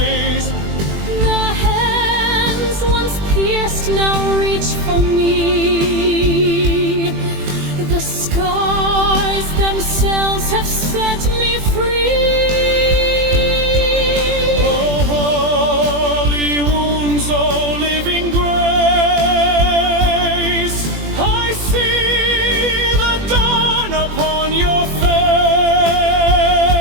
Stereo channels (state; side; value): late; left; 21 ms